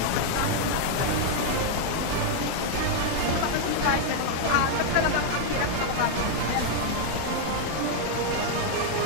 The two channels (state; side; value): different; both; correlation 0.00